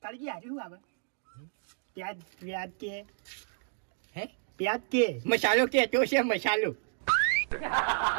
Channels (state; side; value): silent; left; digital silence